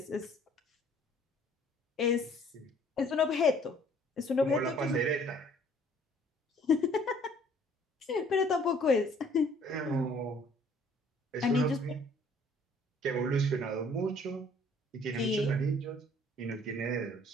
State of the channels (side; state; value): both; normal; correlation 0.57